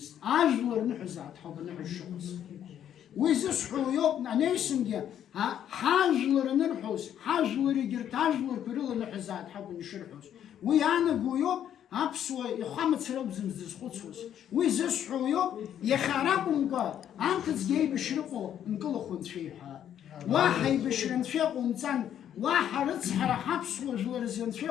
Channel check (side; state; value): right; quieter; 10.0 dB